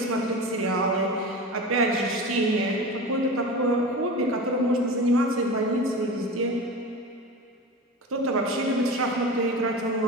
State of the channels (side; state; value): both; normal; correlation 0.30